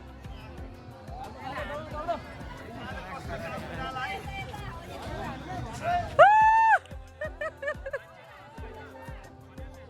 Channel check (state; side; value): identical; both; correlation 1.00